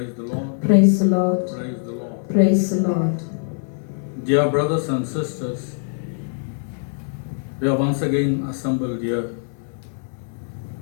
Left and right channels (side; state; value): right; silent; digital silence